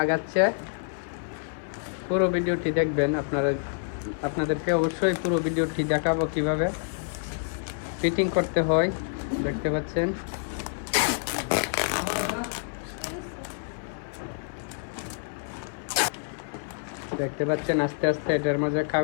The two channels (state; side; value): silent; right; 60 dB below the other